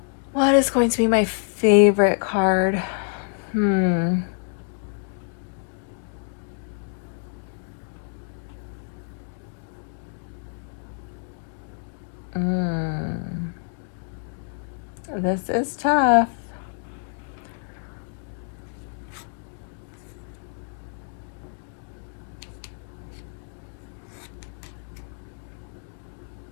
What is going to be my favorite card? This is tough.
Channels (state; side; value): silent; right; 60 dB below the other